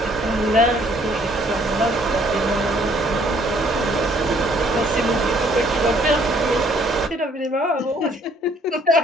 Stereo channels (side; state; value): both; normal; correlation 0.62